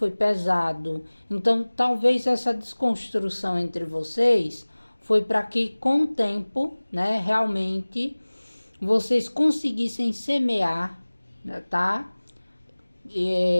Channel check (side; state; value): both; inverted; correlation -1.00